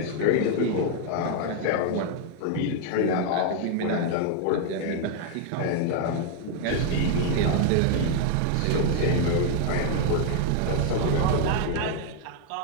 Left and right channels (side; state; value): both; different; correlation 0.00